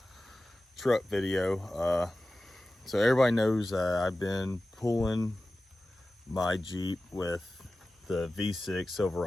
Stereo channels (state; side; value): normal; both; correlation 0.95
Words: truck video. So everybody knows I've been pulling my Jeep with the V6